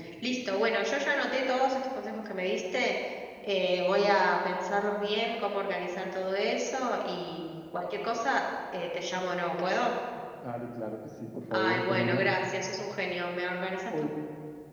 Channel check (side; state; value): both; identical; correlation 1.00